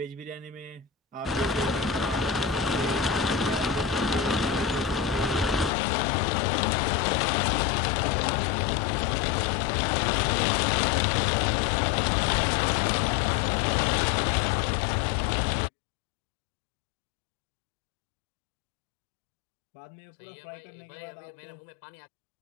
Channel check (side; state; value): right; drops out; at 5.7 s